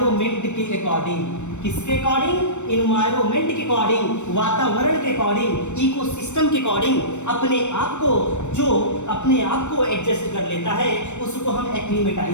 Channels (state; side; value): late; right; 0.84 ms